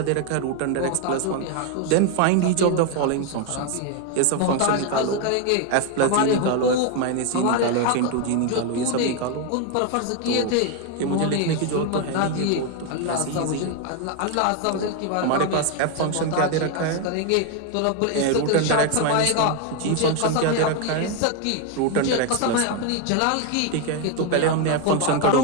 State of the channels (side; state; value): both; different; correlation 0.01